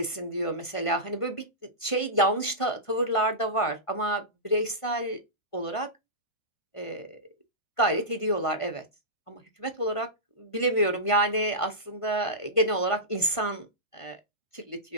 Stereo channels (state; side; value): late; right; 1.5 ms